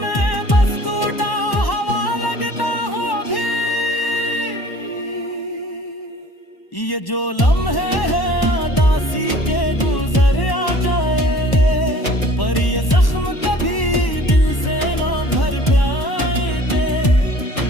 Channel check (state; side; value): late; right; 1.1 ms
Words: बस टूटा हवा लगता हूँ अभी। ये जो लम्हे हैं उदासी के गुजर आ जाएंगे, पर ये जख्म कभी दिल से ना भर पाएंगे।